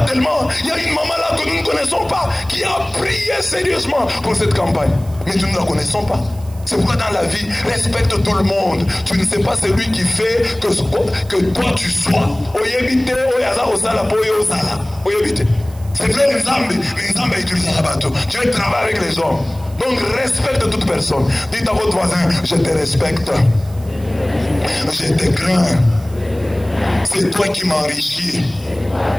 tellement. Il y a une maman là que nous ne connaissons pas qui a prié sérieusement pour cette campagne. Mais nous ne la connaissons pas. C'est pourquoi dans la vie, respecte tout le monde. Tu ne sais pas celui qui fait que toi tu sois. C'est vrai, les hommes utilisent la bateau. Tu travailles avec les hommes. Donc respecte toute personne. Dites à votre voisin, je te respecte. Je te crains. C'est toi qui m'enrichis.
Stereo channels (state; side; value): noise; right; hiss, 24 dB below the sound